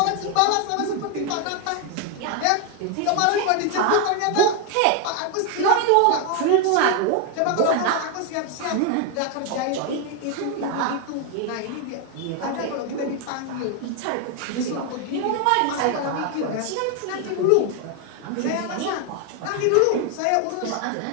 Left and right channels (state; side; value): different; both; correlation 0.01